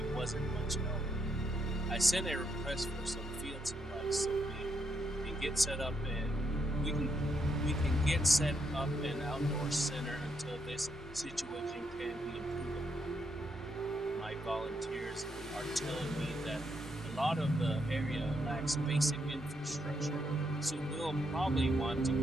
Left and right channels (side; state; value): both; normal; correlation 0.78